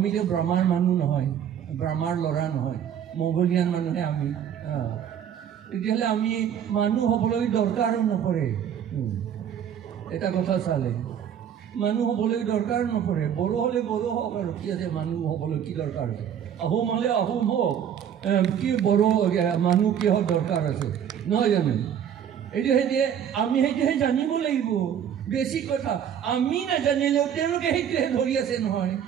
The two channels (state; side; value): quieter; left; 9.0 dB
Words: ব্ৰহ্মাৰ মানুহ নহয় ব্ৰহ্মাৰ ল'ৰা নহয় মংগোলিয়ান মানুহে আমি তেতিয়াহ'লে আমি মানুহ হ'বলৈ দৰকাৰো নপৰে এটা কথা চালে মানুহ হ'বলৈ দৰকাৰ নপৰে বড়ো হ'লে বড়ো হওক আৰু কি আছে মানুহ হ'বলৈ কি দৰকাৰ আছে আহোম হ'লে আহোম হওক কি বড়ো মানুহ কিহৰ দৰকাৰ আছে নহয় জানো এইটো সেইটোৱে আমি সেইটোহে জানিব লাগিব বেছি কথা আমি নাজানিলেও তেওঁলোকে সেইটোহে ধৰি আছে নহয়